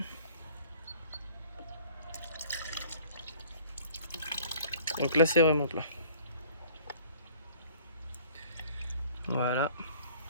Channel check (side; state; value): both; inverted; correlation -0.52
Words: Donc là c'est vraiment plein. Voilà.